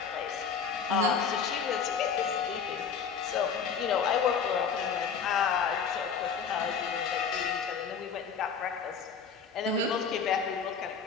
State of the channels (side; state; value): right; quieter; 6.3 dB